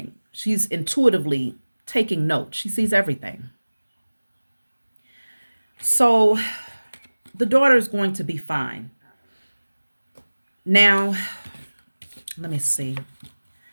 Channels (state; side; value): inverted; both; correlation -1.00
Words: She's intuitively taking notes. She sees everything. So the daughter is going to be fine. Now, let me see.